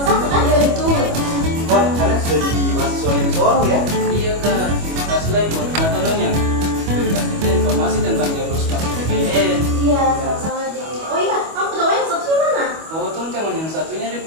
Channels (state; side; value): late; left; 25 ms